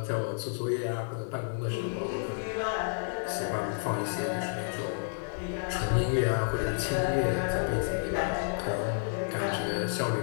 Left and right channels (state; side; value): silent; right; 57 dB below the other